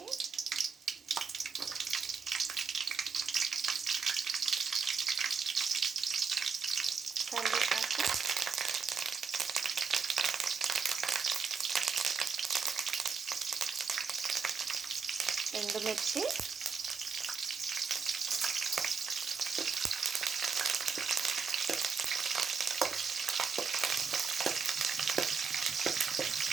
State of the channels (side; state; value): left; quieter; 5.7 dB